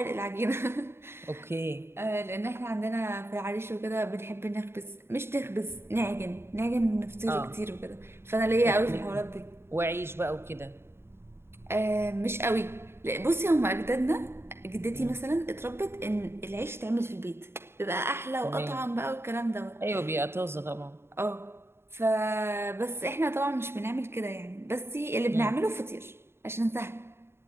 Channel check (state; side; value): late; left; 0.12 ms